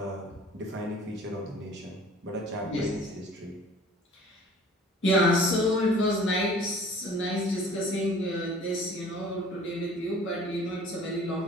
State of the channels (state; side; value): normal; both; correlation 0.48